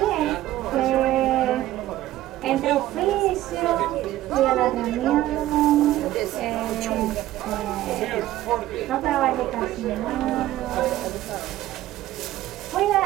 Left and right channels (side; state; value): left; quieter; 14.8 dB